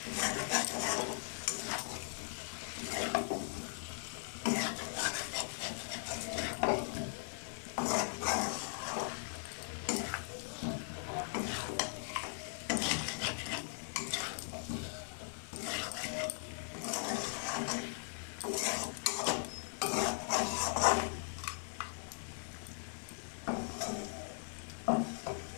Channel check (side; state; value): right; silent; 52 dB below the other